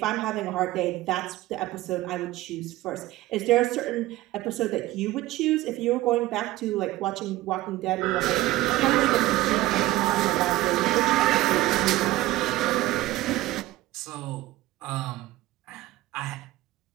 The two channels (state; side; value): quieter; left; 17.1 dB